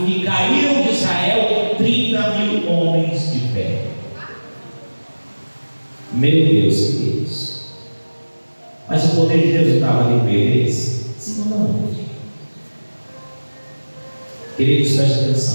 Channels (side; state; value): both; inverted; correlation -1.00